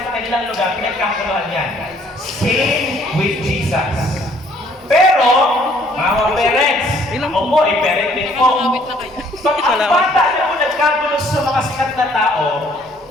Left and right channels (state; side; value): normal; both; correlation 0.62